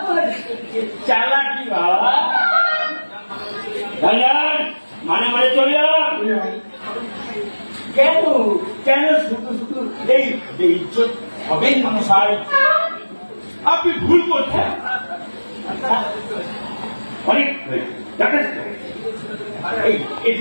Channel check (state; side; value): inverted; both; correlation -1.00